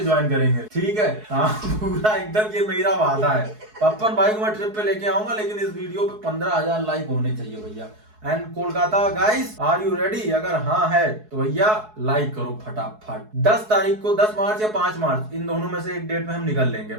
ज्वाइन करेंगे, ठीक है। हाँ पूरा एकदम ये मेरा वादा है। पप्पन भाई को मैं ट्रिप पे लेके आऊंगा, लेकिन इस वीडियो पे 15,000 लाइक होने चाहिए भैया। And Kolkata guys are you ready? अगर हाँ है तो भैया लाइक करो फटाफट। 10 तारीख को, 10 मार्च या 5 मार्च, इन दोनों में से एक डेट में हम निकल लेंगे।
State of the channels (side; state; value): left; late; 4.7 ms